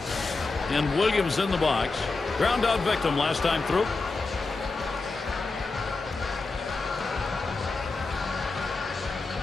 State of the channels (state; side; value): quieter; right; 3.7 dB